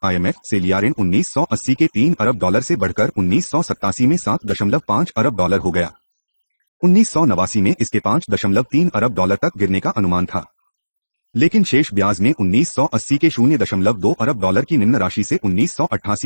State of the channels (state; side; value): inverted; both; correlation -1.00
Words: IMF से लिया ऋण 1980 के 3 अरब डॉलर से बढ़कर 1987 में 7.5 अरब डॉलर हो गया। 1989 में इसके 5.3 अरब डॉलर तक गिरने का अनुमान था, लेकिन शेष ब्याज में 1980 के 0.2 अरब डॉलर की निम्न राशि से